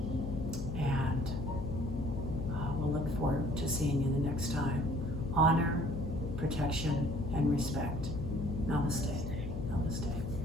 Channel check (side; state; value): left; noise; hum, 6 dB below the sound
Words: And we'll look forward to seeing you the next time. Honor, protection, and respect. Namaste.